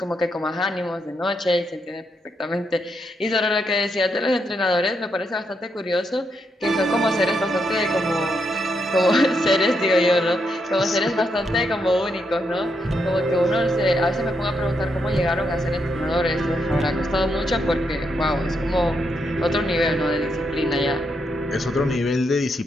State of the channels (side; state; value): both; normal; correlation 0.80